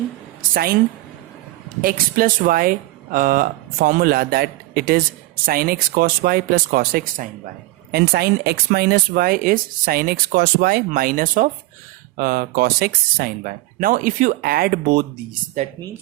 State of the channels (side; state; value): left; quieter; 18.5 dB